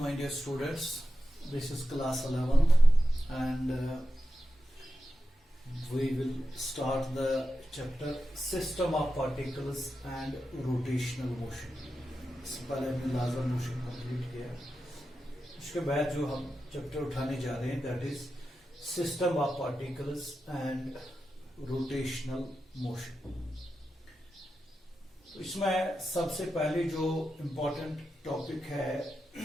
my dear students. This is class 11th and we will start the chapter System of Particles and Rotational Motion. इससे पहले हमने लाजर motion complete किया. उसके बाद जो हम चैप्टर उठाने जा रहे हैं that is system of particles and rotational motion. इसमें सबसे पहले जो इम्पोर्टेंट टॉपिक है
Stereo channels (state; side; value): normal; both; correlation 0.90